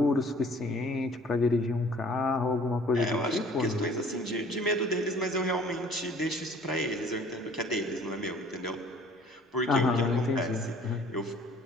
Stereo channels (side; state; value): both; normal; correlation 0.53